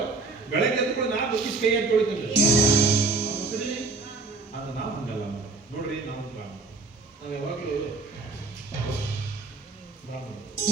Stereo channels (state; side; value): quieter; left; 3.7 dB